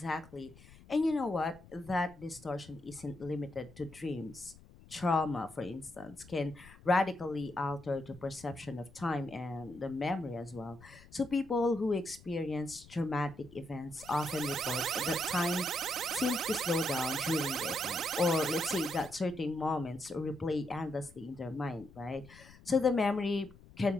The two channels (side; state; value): left; noise; rumble, 22 dB below the sound